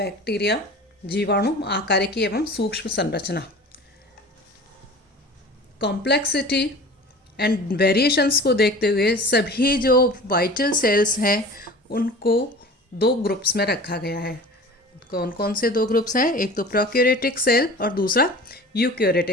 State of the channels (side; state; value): both; normal; correlation 0.40